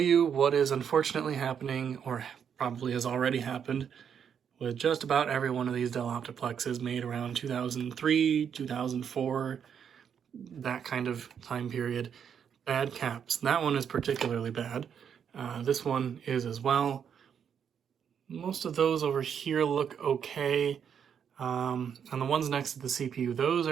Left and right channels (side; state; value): left; quieter; 7.8 dB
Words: what is unfortunately happening, or probably has already happened, with just about every one of these Dell Optiplexes made around 2003, 2004, that kind of time period. Bad caps. That one is particularly bad. This one is as well. Most of those over here look okay. And the ones next to the CPU, those